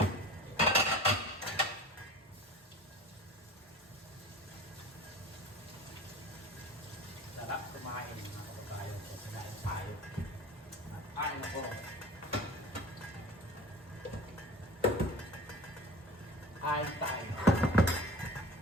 Sarap kumain mga kababayan ko. Kumain tayo. At kain ako. Kain tayo.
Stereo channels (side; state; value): both; normal; correlation 0.39